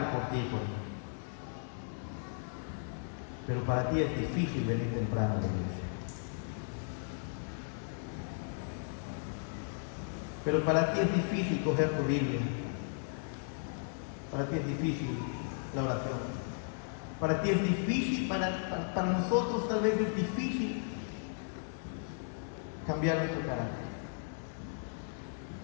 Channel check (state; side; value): silent; right; digital silence